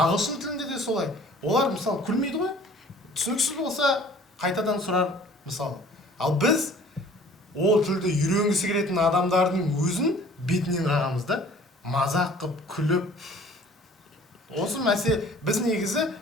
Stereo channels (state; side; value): normal; both; correlation 0.51